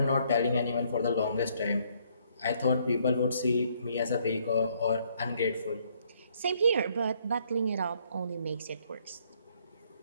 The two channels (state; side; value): inverted; both; correlation -0.67